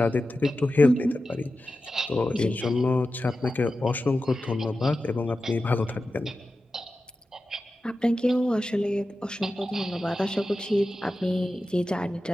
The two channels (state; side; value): normal; both; correlation 0.93